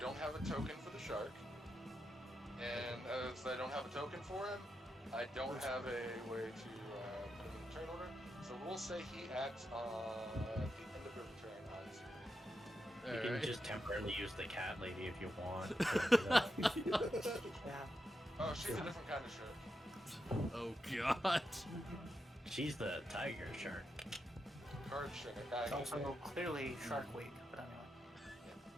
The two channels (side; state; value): both; normal; correlation 0.86